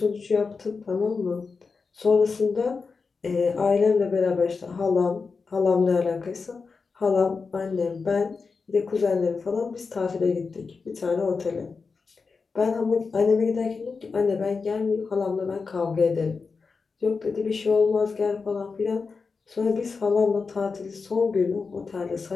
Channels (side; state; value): right; quieter; 4.7 dB